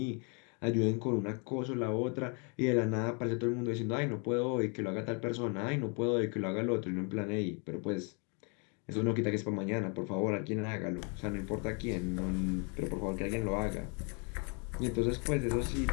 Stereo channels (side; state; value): right; quieter; 35.7 dB